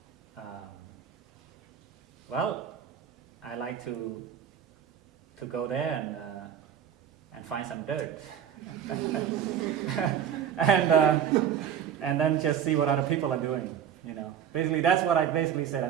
well, I like to go there and find some dirt. And then just see what other people are doing, Basically, that's what I basically said. I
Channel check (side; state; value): left; quieter; 9.0 dB